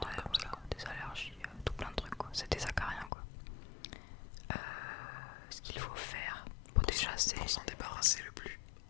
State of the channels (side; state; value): right; drops out; at 3.1 s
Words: comme ça. Des allergies, tout plein de trucs quoi. C'est des acariens quoi. Ce qu'il faut faire, déjà c'est... Pour s'en débarrasser le plus